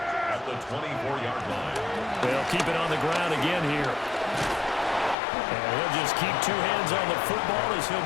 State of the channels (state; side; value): drops out; right; at 5.2 s